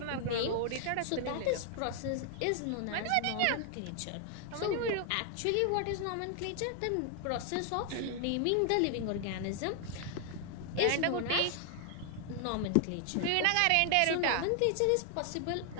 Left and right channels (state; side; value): different; both; correlation 0.00